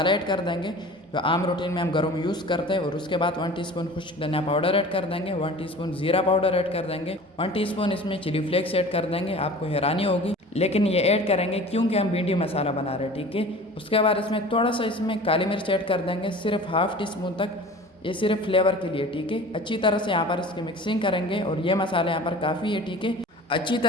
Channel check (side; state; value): both; normal; correlation 0.41